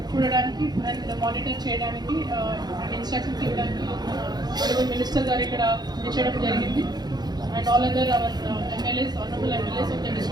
చూడడానికి అండ్ మానిటర్ చేయడానికి అండ్ ఇన్స్ట్రక్షన్స్ ఇవ్వడానికి ఆనరబుల్ మినిస్టర్ గారు ఇక్కడ చేయడం జరిగింది. And all other our MLAs, honourable MLAs of the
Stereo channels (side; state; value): left; late; 0.20 ms